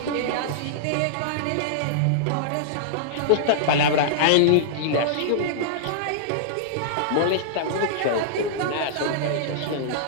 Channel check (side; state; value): both; different; correlation -0.02